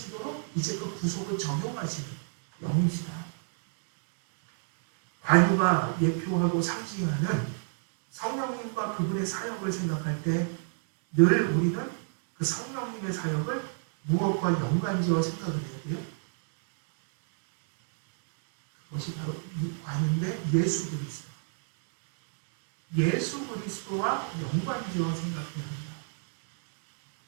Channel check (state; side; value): silent; left; digital silence